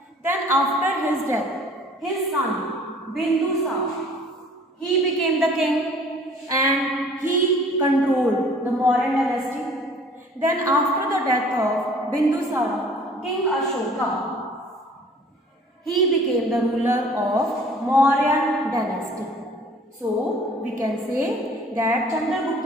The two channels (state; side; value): normal; both; correlation 0.52